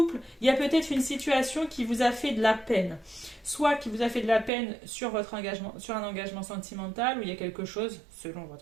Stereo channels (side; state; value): left; drops out; at 4.5 s